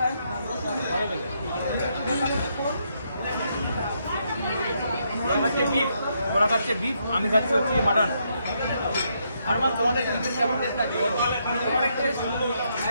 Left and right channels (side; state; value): both; inverted; correlation -0.77